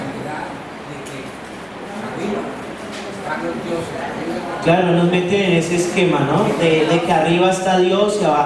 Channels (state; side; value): identical; both; correlation 1.00